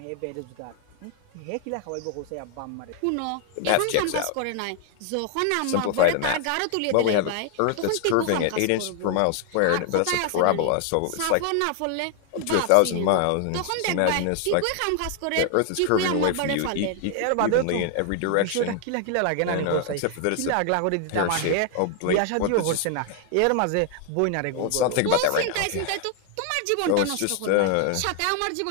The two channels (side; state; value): both; different; correlation 0.00